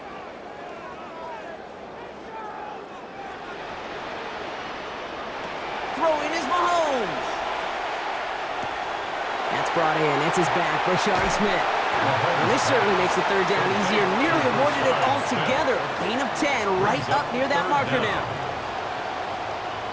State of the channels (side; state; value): both; identical; correlation 1.00